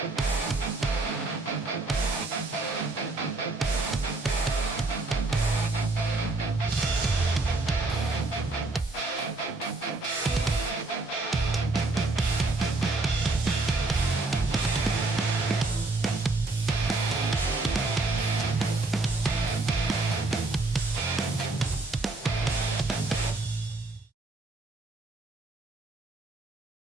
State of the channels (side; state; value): left; quieter; 3.2 dB